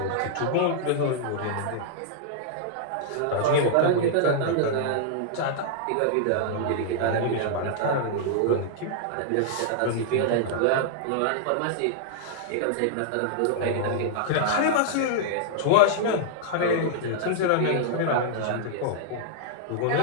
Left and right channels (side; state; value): both; different; correlation -0.01